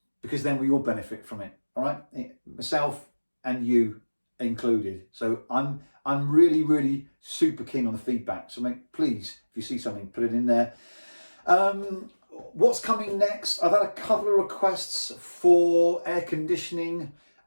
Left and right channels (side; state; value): both; inverted; correlation -1.00